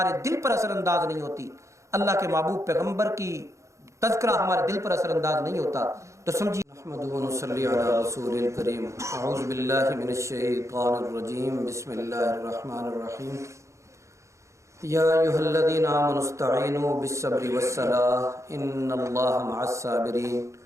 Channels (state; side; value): late; left; 0.14 ms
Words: دل پر اثر انداز نہیں ہوتی، اللہ کے محبوب پیغمبر کی تذکرہ ہمارے دل پر اثر انداز نہیں ہوتا، تو سمجھیے نحمدہ و نصلی علی رسول الکریم۔ اعوذ باللہ من الشیطان الرجیم، بسم اللہ الرحمن الرحیم۔ یا ایھا الذین آمنوا استعینوا بالصبر والصلاۃ ان اللہ مع الصابرین